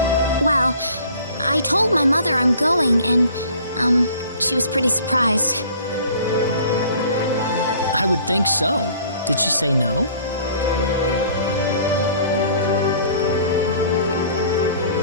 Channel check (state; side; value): inverted; both; correlation -0.51